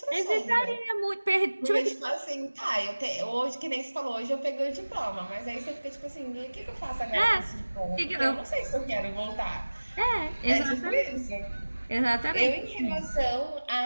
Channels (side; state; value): both; inverted; correlation -1.00